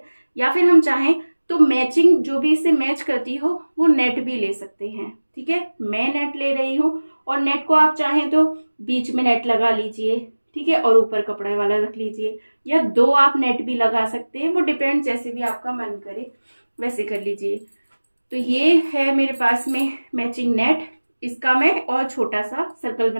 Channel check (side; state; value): both; inverted; correlation -1.00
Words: या फिर हम चाहें तो मैचिंग जो भी इससे मैच करती हो वो नेट भी ले सकते हैं। ठीक है, मैं नेट ले रही हूँ, और नेट को आप चाहें तो बीच में नेट लगा लीजिए। ठीक है, और ऊपर कपड़े वाला रख लीजिए, या 2 आप नेट भी लगा सकते हैं, वो डिपेंड, जैसे भी आपका मन करे वैसे कर लीजिए। तो ये है मेरे पास में मैचिंग नेट, इसका मैं और छोटा सा सर्कल